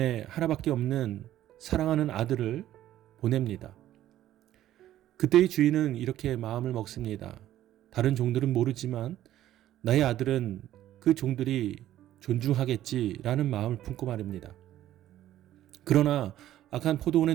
하나밖에 없는 사랑하는 아들을 보냅니다. 그때의 주인은 이렇게 마음을 먹습니다. 다른 종들은 모르지만 나의 아들은 그 종들이 존중하겠지라는 마음을 품고 말입니다. 그러나 악한 포도원의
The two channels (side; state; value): left; quieter; 13.0 dB